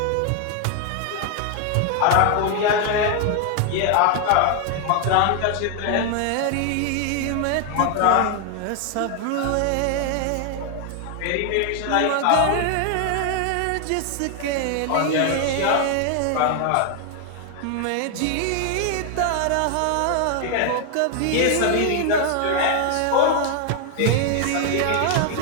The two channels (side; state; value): both; different; correlation 0.00